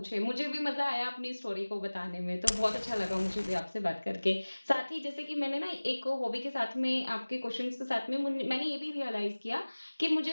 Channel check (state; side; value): inverted; both; correlation -1.00